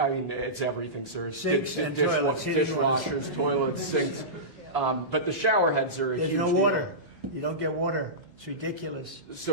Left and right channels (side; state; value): both; normal; correlation -0.17